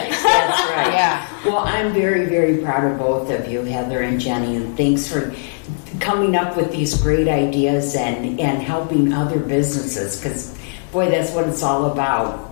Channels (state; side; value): silent; right; digital silence